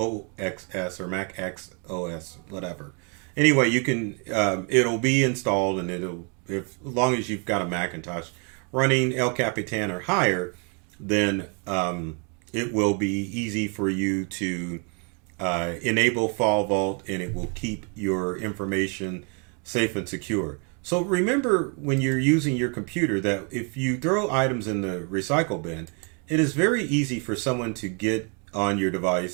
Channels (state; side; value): quieter; left; 37.1 dB